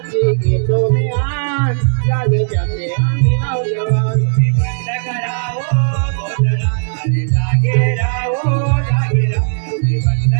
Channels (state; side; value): silent; left; digital silence